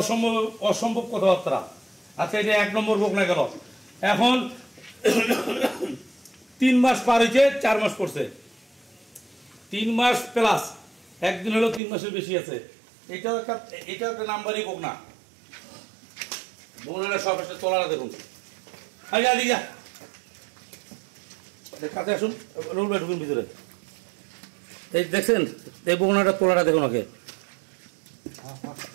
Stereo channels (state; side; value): drops out; left; at 11.8 s